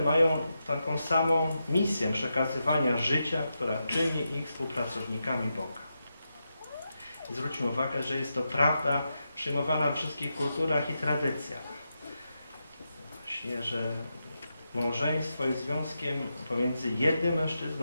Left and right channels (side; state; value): both; inverted; correlation -0.87